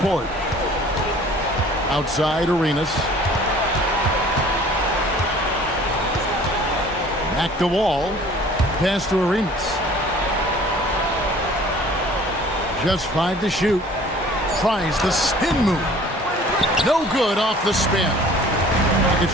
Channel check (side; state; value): both; normal; correlation 0.50